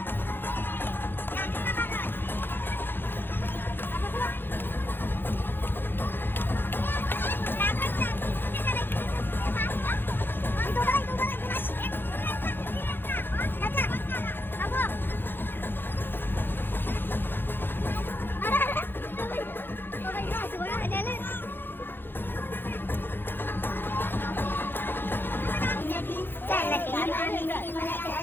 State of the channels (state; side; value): late; right; 0.10 ms